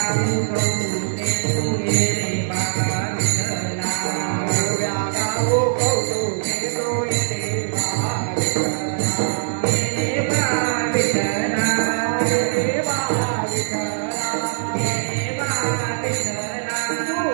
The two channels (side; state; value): left; silent; digital silence